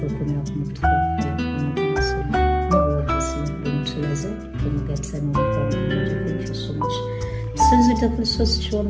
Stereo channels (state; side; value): identical; both; correlation 1.00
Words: coming up with thank you so much since it was so